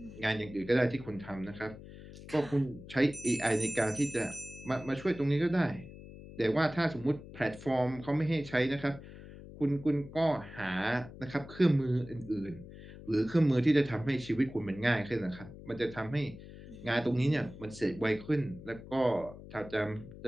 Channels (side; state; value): left; noise; hum, 15 dB below the sound